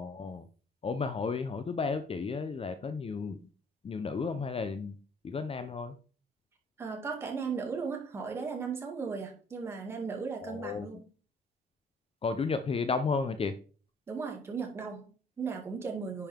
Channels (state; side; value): normal; both; correlation 0.58